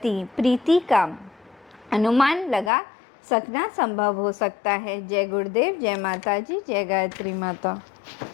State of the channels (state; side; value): drops out; right; at 2.7 s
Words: प्रीति का अनुमान लगा सकना संभव हो सकता है। जय गुरुदेव, जय माता जी, जय गायत्री माता।